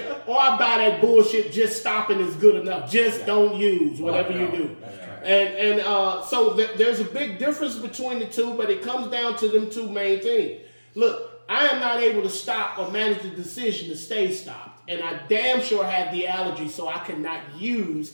or I buy that bullshit, just stopping is good enough. Just don't use whatever you do. And so there's a big difference between the two, but it comes down to them two main things. Look, I am not able to stop or manage the decision to stay stopped. And I damn sure have the allergy, so I cannot use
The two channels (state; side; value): inverted; both; correlation -1.00